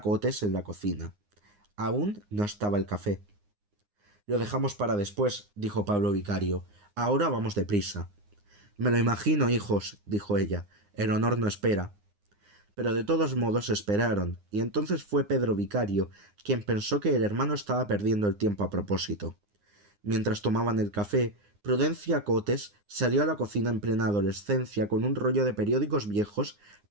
en la cocina. Aún no estaba el café. Lo dejamos para después, dijo Pablo Vicario. Ahora vamos deprisa. Me lo imagino, hijos, dijo ella. El honor no espera. Pero de todos modos esperaron, y entonces fue Pedro Vicario quien pensó que el hermano estaba perdiendo el tiempo a propósito. Mientras tomaban el café, Prudencia Cotes salió a la cocina en plena adolescencia con un rollo de periódicos viejos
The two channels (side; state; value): left; late; 9.7 ms